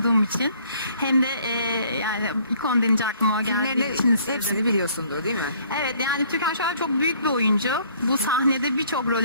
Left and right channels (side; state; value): both; inverted; correlation -0.60